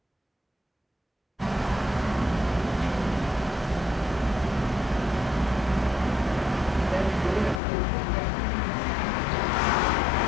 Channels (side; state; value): right; drops out; at 7.6 s